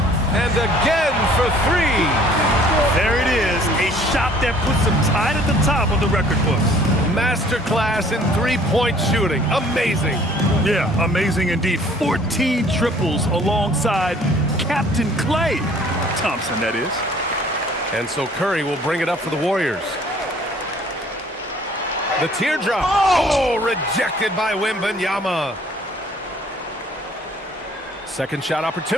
and again for three. There it is, a shot that puts him tied at the top of the record books. Masterclass in three-point shooting. Amazing. Yeah, amazing indeed. 14 triples alongside Captain Klay Thompson, that is. And so Curry will bring it up for the Warriors. The teardrop. Oh, rejected by Wembanyama. Second shot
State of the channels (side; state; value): both; normal; correlation 0.55